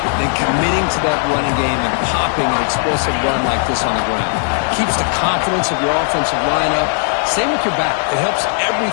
than committing to that running game and popping an explosive run like this on the ground. Keeps the confidence of your offensive line up. Same with your back. It helps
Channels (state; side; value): silent; right; 65 dB below the other